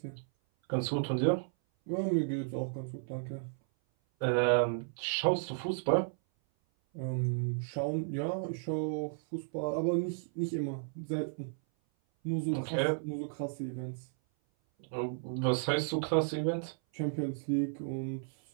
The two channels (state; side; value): silent; left; 55 dB below the other